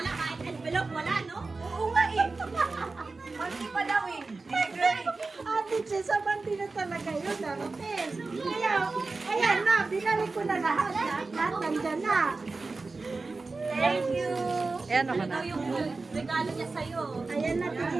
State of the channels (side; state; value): left; quieter; 3.8 dB